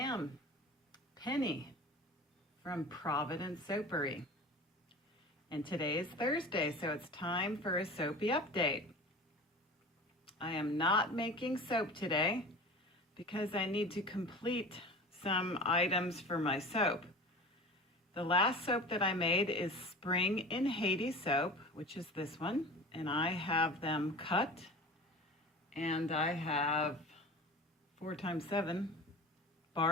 Penny from Providence Soapery. And today is Thursday, so it's time for a soapy update. I am not making soap today because I need to complete some items for my soap. The last soap that I made is Spring in Haiti soap, which is this one, and I have them cut, and I have 4 times 7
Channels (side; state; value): both; normal; correlation 0.36